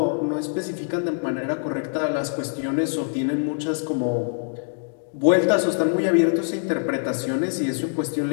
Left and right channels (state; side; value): silent; right; digital silence